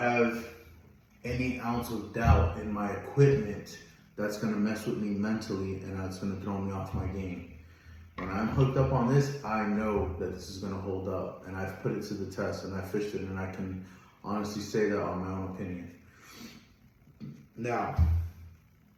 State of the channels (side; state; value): both; identical; correlation 1.00